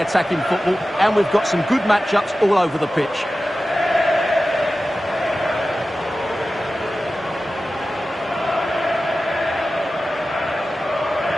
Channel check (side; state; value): both; normal; correlation 0.94